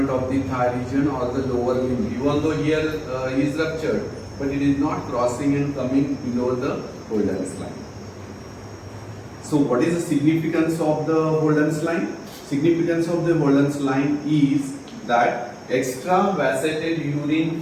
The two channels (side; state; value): both; identical; correlation 1.00